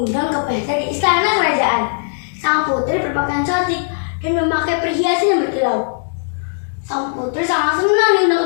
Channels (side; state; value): right; silent; digital silence